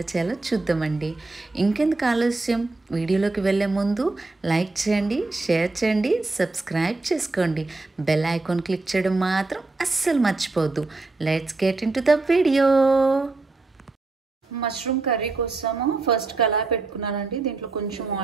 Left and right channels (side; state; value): left; quieter; 3.4 dB